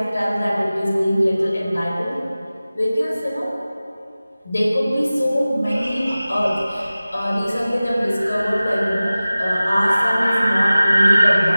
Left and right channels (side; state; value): both; inverted; correlation -0.97